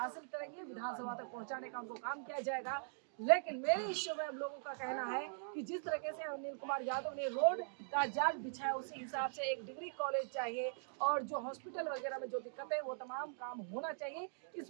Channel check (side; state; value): left; silent; digital silence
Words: करेंगे। विधानसभा तक पहुंचाने का उनको काम किया जाएगा। लेकिन मेरे इश्यू में अब लोगों का कहना है कि जिस तरीके से अनिल कुमार यादव ने रोड का जाल बिछाया, उसी हिसाब से एक डिग्री कॉलेज चाहिए और जो हॉस्पिटल वगैरह में जो दिक्कत है वो तमाम काम होना चाहिए।